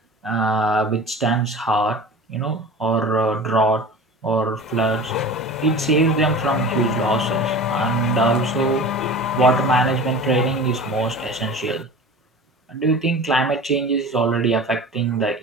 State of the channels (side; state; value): both; normal; correlation 0.36